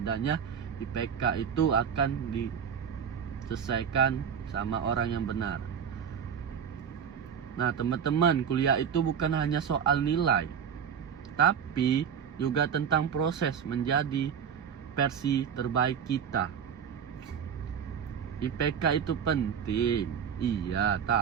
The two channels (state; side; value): quieter; left; 7.6 dB